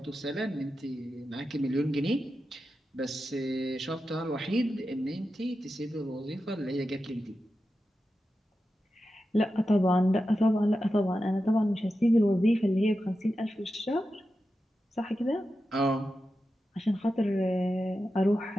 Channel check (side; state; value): both; normal; correlation 0.91